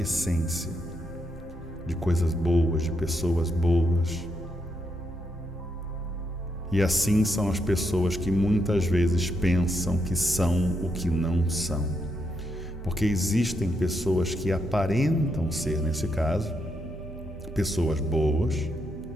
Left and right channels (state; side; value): normal; both; correlation 0.79